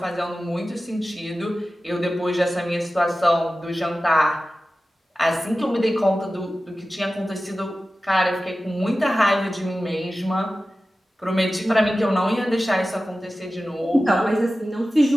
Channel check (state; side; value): normal; both; correlation 0.95